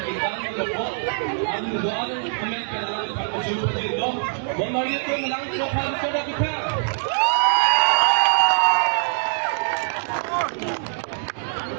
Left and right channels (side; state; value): left; silent; digital silence